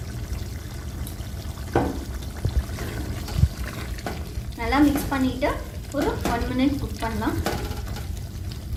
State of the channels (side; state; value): both; identical; correlation 1.00